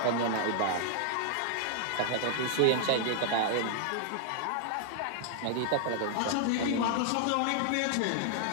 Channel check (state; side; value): different; both; correlation 0.00